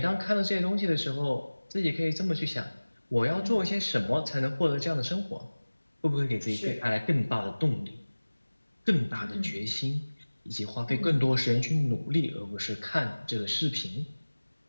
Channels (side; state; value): both; inverted; correlation -1.00